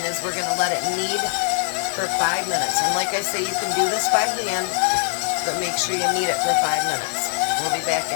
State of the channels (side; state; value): right; silent; digital silence